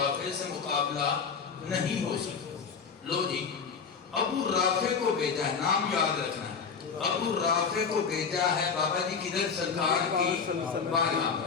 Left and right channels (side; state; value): right; quieter; 5.9 dB